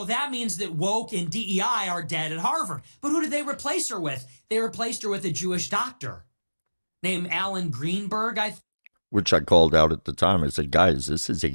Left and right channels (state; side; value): inverted; both; correlation -1.00